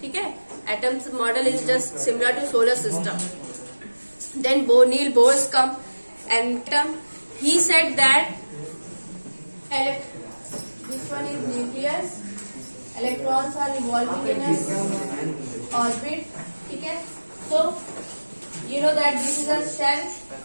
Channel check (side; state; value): both; inverted; correlation -1.00